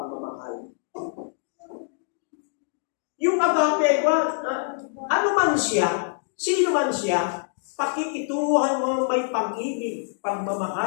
Yung agape, ano man siya, sino man siya, pakikitunguhan mo may pag-ibig,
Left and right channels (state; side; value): silent; right; digital silence